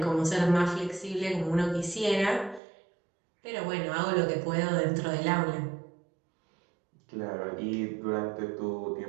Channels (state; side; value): drops out; left; at 2.6 s